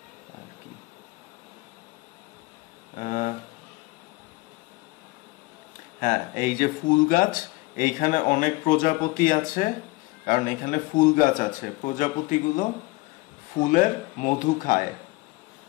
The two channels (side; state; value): right; quieter; 22.8 dB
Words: হ্যাঁ, এই যে ফুল গাছ, এইখানে অনেক প্রজাপতি আছে, কারণ এখানে ফুল গাছ আছে। প্রজাপতিগুলো ফুলের মধু খায়।